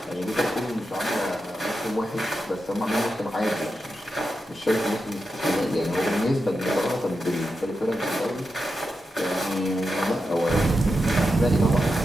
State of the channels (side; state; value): both; normal; correlation 0.88